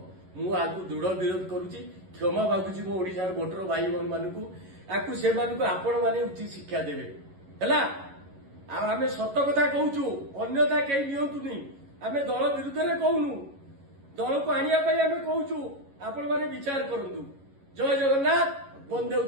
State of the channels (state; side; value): late; left; 11 ms